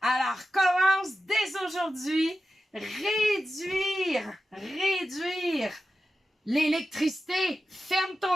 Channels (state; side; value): normal; both; correlation 0.92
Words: commence dès aujourd'hui, réduire l'électricité. Ferme